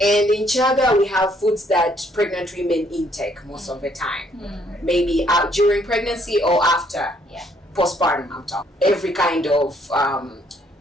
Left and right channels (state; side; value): normal; both; correlation 0.67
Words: And in Chaga, we have foods that pregnant women intake most of the time. Maybe during pregnancy or after. Yeah. Postpartum, I'm talking. Every kind of